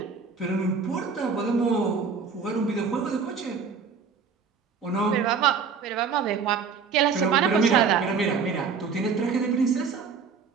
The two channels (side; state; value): left; quieter; 5.6 dB